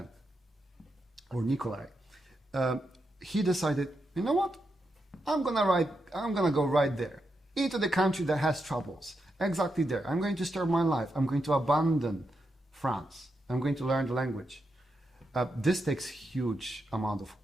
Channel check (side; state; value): both; normal; correlation 0.84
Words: or Nikolai, he decided, you know what? I'm gonna go right there into the country that has troubles. Exactly there. I'm going to start my life. I'm going to abandon France. I'm going to learn the language. This takes huge amount of